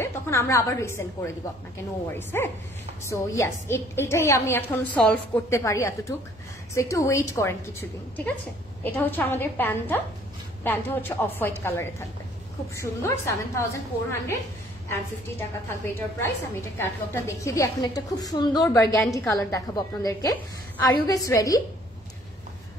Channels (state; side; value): normal; both; correlation 0.59